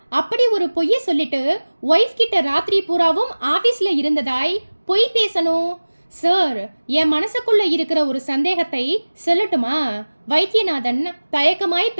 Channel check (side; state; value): both; inverted; correlation -1.00